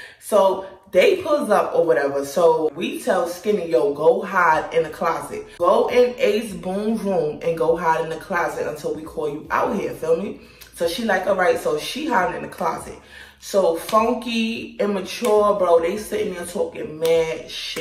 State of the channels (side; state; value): both; identical; correlation 1.00